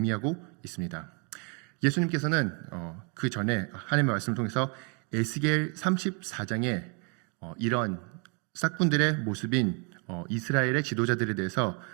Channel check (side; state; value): left; quieter; 35.1 dB